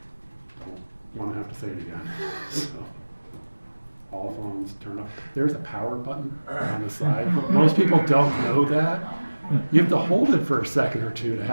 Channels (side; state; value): both; inverted; correlation -1.00